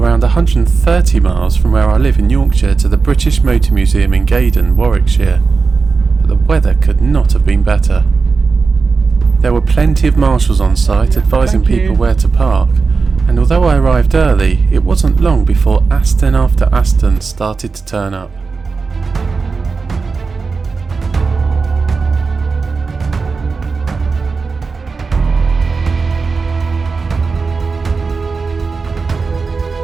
130 miles from where I live in Yorkshire to the British Motor Museum in Gaydon, Warwickshire. But the weather could not have been better. There were plenty of marshals on site advising people where to park, and although I arrived early, it wasn't long before Aston after Aston started to turn up.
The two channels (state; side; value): quieter; left; 4.6 dB